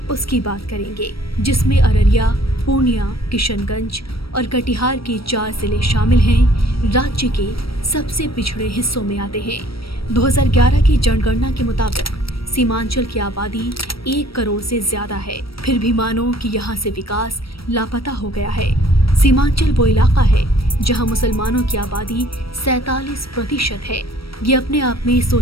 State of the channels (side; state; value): right; late; 0.75 ms